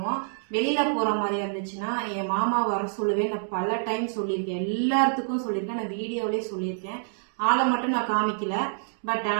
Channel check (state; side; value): silent; left; digital silence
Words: வெளியில போற மாதிரி இருந்துச்சுன்னா என் மாமா வர சொல்லுவேன். நான் பல டைம் சொல்லியிருக்கேன், எல்லாத்துக்கும் சொல்லியிருக்கேன், நான் வீடியோலயே சொல்லியிருக்கேன். ஆளை மட்டும் நான் காமிக்கல. பட்